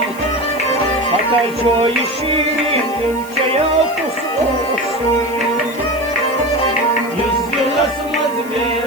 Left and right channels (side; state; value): left; noise; hiss, 18 dB below the sound